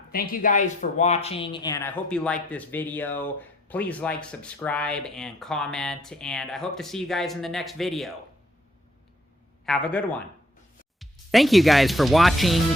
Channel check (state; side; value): normal; both; correlation 0.66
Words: thank you guys for watching, and I hope you like this video. Please like, subscribe, and comment, and I hope to see you guys in the next video. Have a good one. Thank you guys for watching.